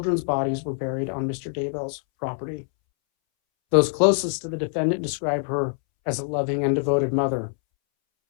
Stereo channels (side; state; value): right; silent; 62 dB below the other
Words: bodies were buried on Mr. Daybell's property. Those closest to the defendant describe her as a loving and devoted mother.